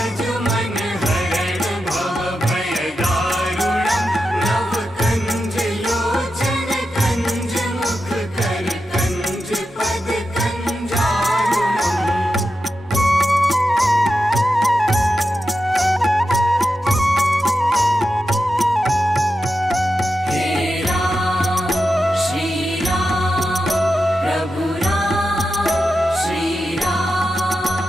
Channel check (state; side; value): normal; both; correlation 0.89